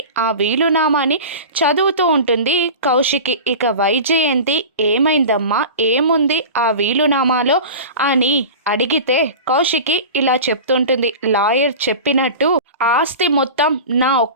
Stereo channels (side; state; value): both; inverted; correlation -0.32